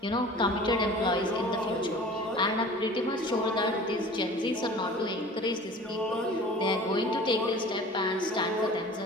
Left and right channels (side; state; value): both; normal; correlation 0.43